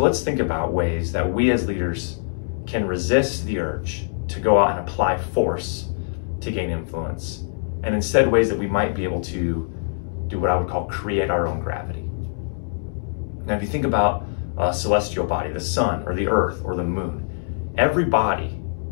let's think about ways that we as leaders can resist the urge to go out and apply force to gain influence, and instead ways that we might be able to do what I would call create our own gravity. Now, if you think about a celestial body, the sun or the earth or the moon, every body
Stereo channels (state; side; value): silent; right; 63 dB below the other